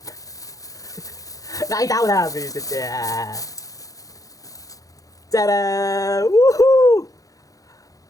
Nakita ko na. Visit siya. Tada! Woohoo!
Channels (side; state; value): right; late; 0.17 ms